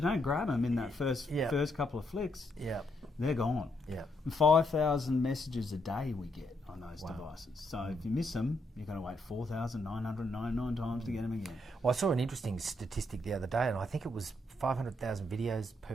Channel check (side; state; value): both; normal; correlation 0.77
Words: don't grab them in that first couple of flicks, they're gone. Yeah. 5,000 messages a day we get on those devices. So if you miss them, you're going to wait 4,999 times to get them again. Well, I saw an interesting statistic the other day, and I think it was 500,000 videos